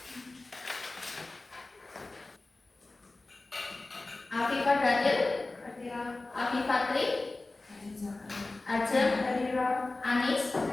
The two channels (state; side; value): quieter; right; 3.2 dB